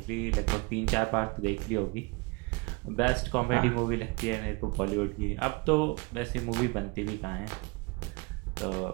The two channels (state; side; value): quieter; left; 27.8 dB